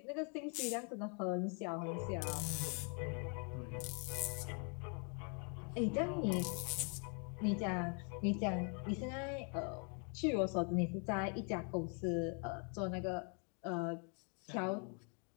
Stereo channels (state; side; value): quieter; right; 38.7 dB